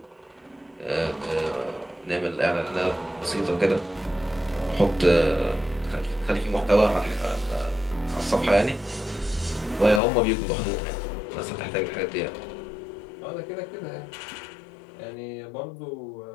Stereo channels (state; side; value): drops out; right; at 10.0 s